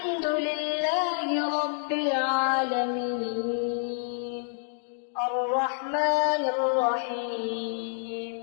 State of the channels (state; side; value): silent; right; digital silence